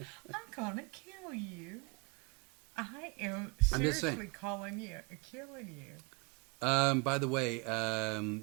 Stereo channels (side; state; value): left; quieter; 30.2 dB